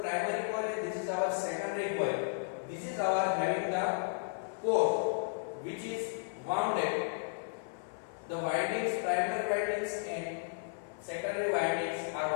coil and this is our secondary coil. This is our having the core, which is wounded. The windings, primary windings and secondary windings are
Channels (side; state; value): right; silent; 55 dB below the other